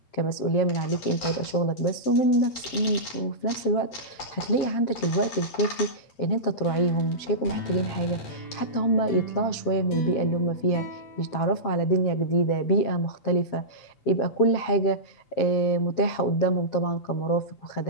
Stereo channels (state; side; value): late; right; 7.6 ms